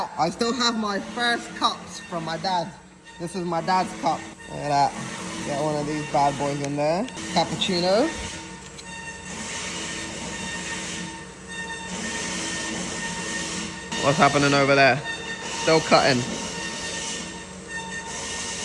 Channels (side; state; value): both; identical; correlation 1.00